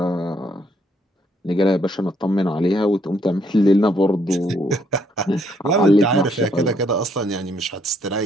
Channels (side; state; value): both; normal; correlation 0.70